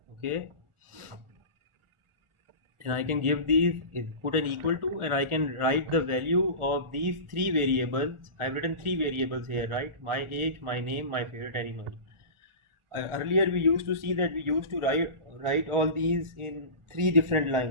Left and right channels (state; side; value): late; left; 1.4 ms